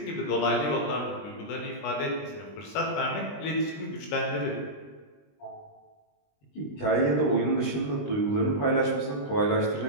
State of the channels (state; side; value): late; right; 20 ms